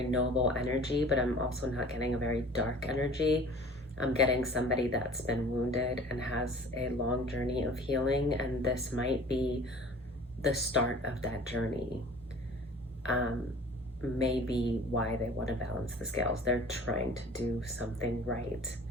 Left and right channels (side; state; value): both; normal; correlation 0.45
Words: noble energy, but I'm also not getting a very dark energy. I'm getting somebody that's been wounded and has a long journey of healing, and this might be the start of that journey. Maybe why they want to balance the scales. They're trying to do something right.